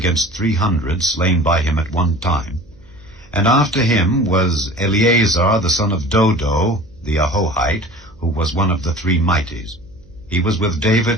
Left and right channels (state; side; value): noise; right; hum, 28 dB below the sound